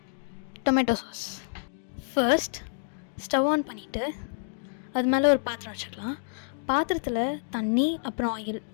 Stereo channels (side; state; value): right; silent; digital silence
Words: tomato sauce. First stove on பண்ணிவிட்டு அது மேலே ஒரு பாத்திரம் வச்சுக்கலாம். பாத்திரத்தில் தண்ணி அப்புறம் ஆயில்